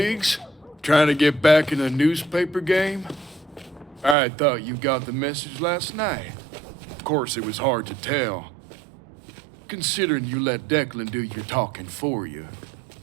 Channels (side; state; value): left; drops out; at 4.2 s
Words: Trying to get back in the newspaper game? I thought you got the message last night. Of course, it was hard to tell, considering you let Declan do your talking for you.